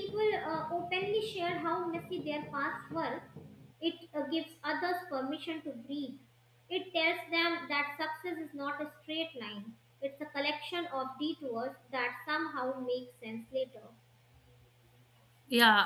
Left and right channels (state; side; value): identical; both; correlation 1.00